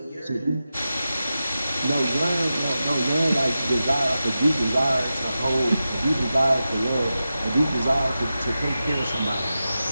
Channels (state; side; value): inverted; both; correlation -0.92